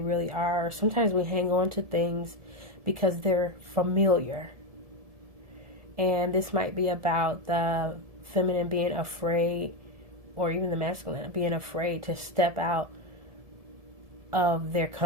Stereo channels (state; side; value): late; left; 1.7 ms